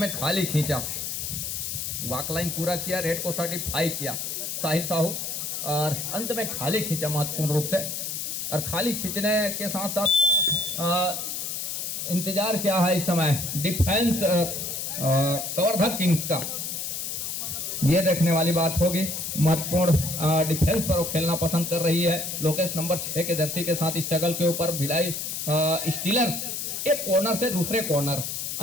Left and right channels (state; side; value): noise; left; hiss, 4 dB below the sound